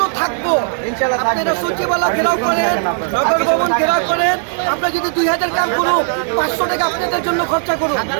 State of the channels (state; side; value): silent; left; digital silence